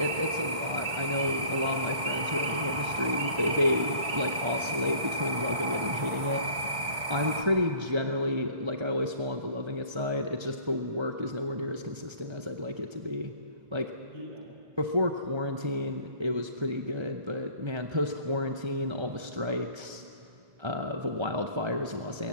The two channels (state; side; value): late; left; 1.5 ms